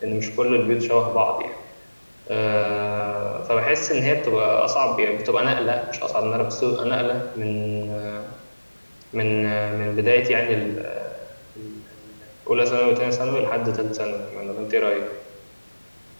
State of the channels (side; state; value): both; inverted; correlation -1.00